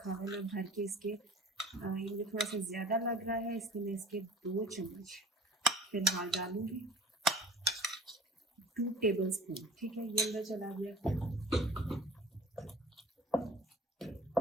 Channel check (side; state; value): both; normal; correlation 0.45